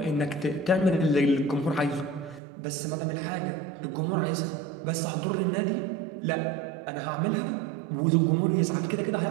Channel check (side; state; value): left; drops out; at 2.4 s